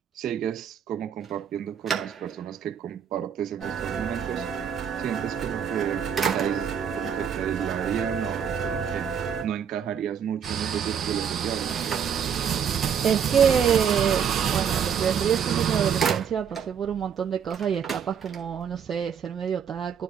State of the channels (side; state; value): left; quieter; 7.8 dB